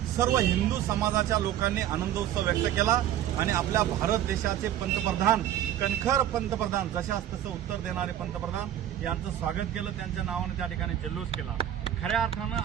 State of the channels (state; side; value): quieter; left; 11.4 dB